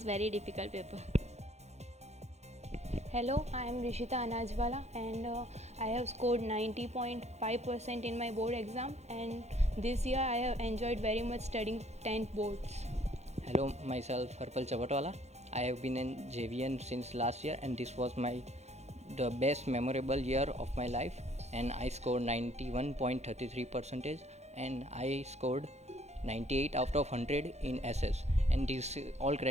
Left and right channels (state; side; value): late; left; 0.32 ms